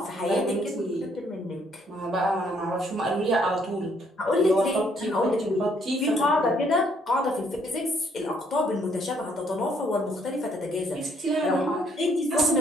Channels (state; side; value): normal; both; correlation 0.68